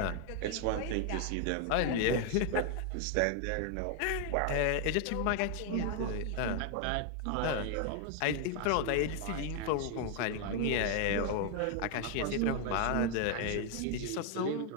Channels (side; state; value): both; different; correlation 0.00